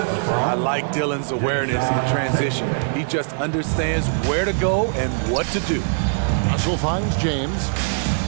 like Dillon's awareness in transition. He just understands where to go and what to do. Russell finds James.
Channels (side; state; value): left; silent; 65 dB below the other